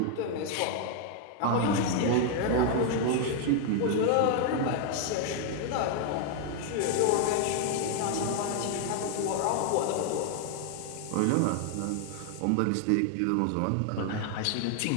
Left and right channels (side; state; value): both; different; correlation 0.00